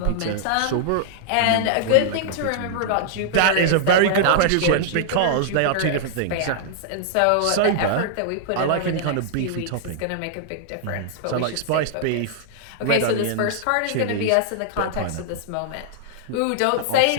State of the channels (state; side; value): different; both; correlation -0.01